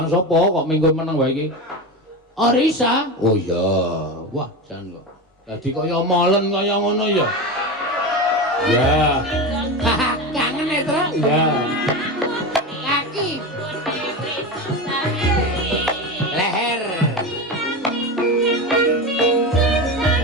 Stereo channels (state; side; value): normal; both; correlation 0.22